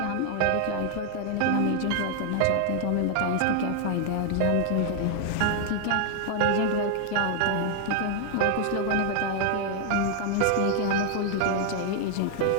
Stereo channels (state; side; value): different; both; correlation 0.00